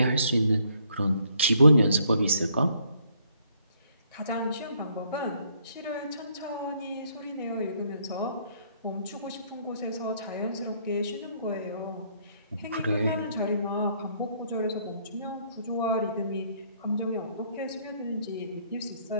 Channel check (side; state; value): both; inverted; correlation -0.67